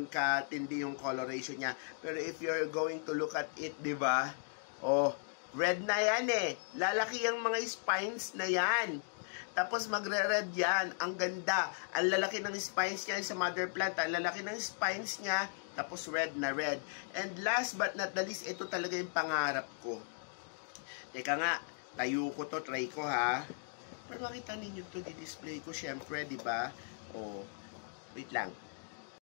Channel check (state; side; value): silent; right; digital silence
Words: katindi yung coloration niya. Pero if you're going to look at it, di ba? Oh, red na yan eh. Lalaki ang mga spines na yan. Tapos magre-red yan. Ang ganda. Ang lalaki ng spines niya sa mother plant. Ang lalaki ng spines niya. Tapos red na red. And last but not the least, ito talaga yung pangarap ko. Teka nga, tayo ko to, try ko ha. Para makita ninyo to, di-display ko syempre, di ba? Oh, wait lang.